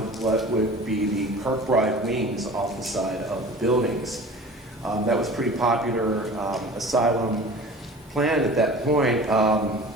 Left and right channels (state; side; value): normal; both; correlation 0.41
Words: what would be the Kirkbride wings off the side of the buildings. That was a pretty popular asylum plan at that point.